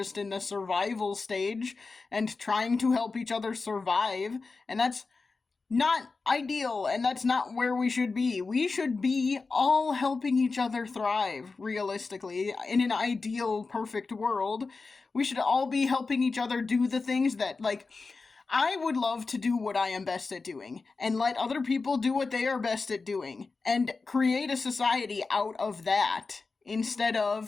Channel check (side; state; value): right; quieter; 4.2 dB